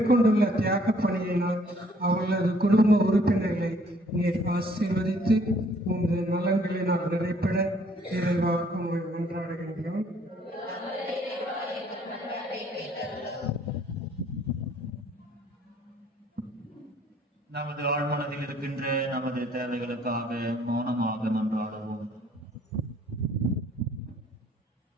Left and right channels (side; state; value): both; normal; correlation 0.61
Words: தியாக பணியினால் அவர்களது குடும்ப உறுப்பினர்களை நீர் ஆசீர்வதித்து உமது நலன்களினால் நிறைப்பட இறைவா உம்மை மன்றாடுகின்றோம். நமது ஆழ்மனதில் இருக்கின்ற நமது தேவைகளுக்காக மௌனமாக மன்றாடுவோம்.